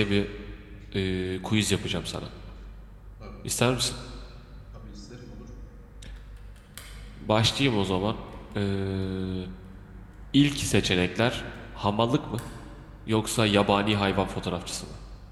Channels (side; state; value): both; identical; correlation 1.00